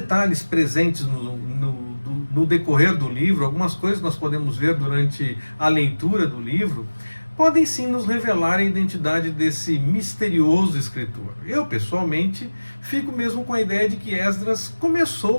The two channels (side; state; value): both; inverted; correlation -1.00